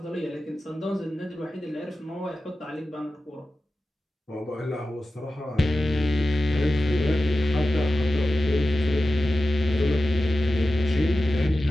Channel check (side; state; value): both; normal; correlation 0.94